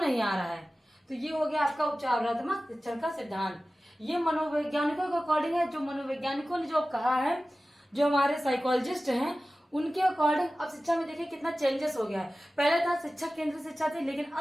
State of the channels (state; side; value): normal; both; correlation 0.96